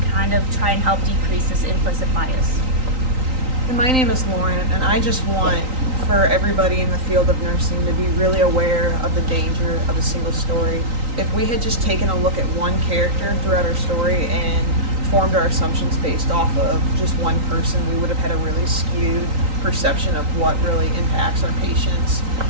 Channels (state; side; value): late; left; 3.9 ms